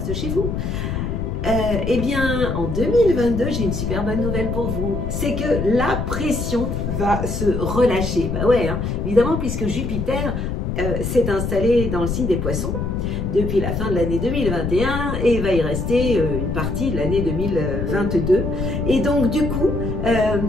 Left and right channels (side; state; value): left; noise; rumble, 2 dB below the sound